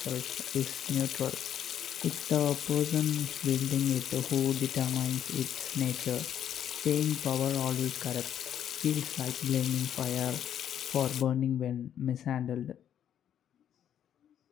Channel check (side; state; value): right; quieter; 9.9 dB